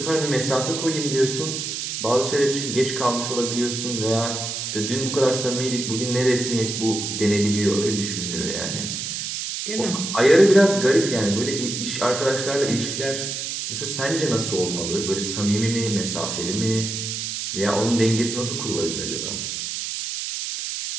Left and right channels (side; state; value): right; noise; hiss, 4 dB below the sound